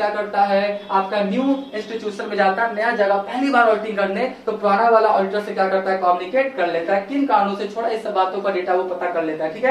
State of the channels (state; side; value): identical; both; correlation 1.00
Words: करता है, आपका न्यू इंस्टीट्यूशन में जाता है, नया जगह पहली बार ऑडिटिंग करने, तो पुराना वाला ऑडिटर से क्या करता है, कम्युनिकेट कर लेता है, किन कारणों से छोड़ा, इस सब बातों का डेटा वो पता कर लेता है। ठीक